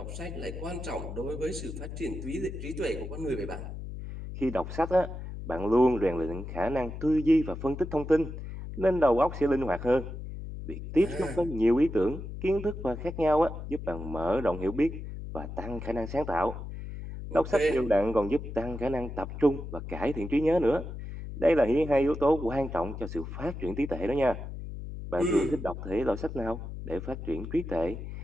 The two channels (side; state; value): left; noise; hum, 8 dB below the sound